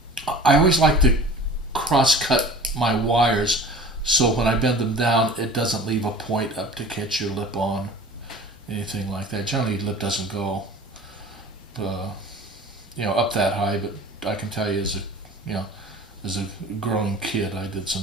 I always like to cross-cut my wires so when I bend them down, it doesn't leave a point up to catch your lip on, anything like that. Generally, lip doesn't go, up that high. But I can tell you, as a growing kid, I did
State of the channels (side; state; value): both; normal; correlation 0.42